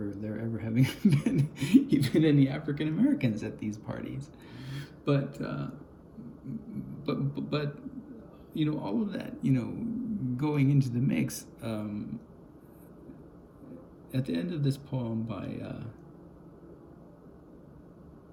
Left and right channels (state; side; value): identical; both; correlation 1.00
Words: there ever having been even any African Americans at these parties. But all of that, going into the mix, at the end of this poem by